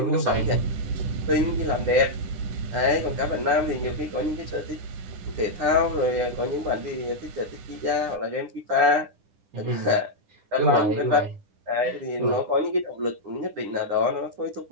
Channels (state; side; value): late; left; 10 ms